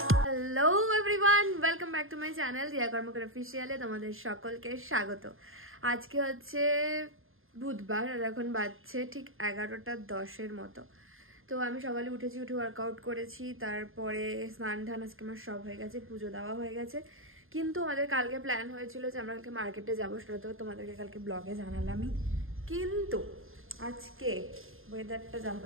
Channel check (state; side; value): late; left; 0.60 ms